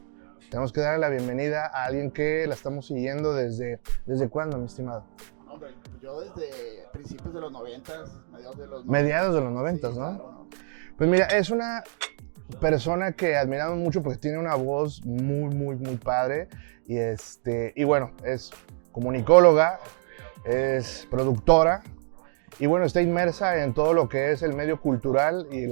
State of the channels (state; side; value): silent; left; digital silence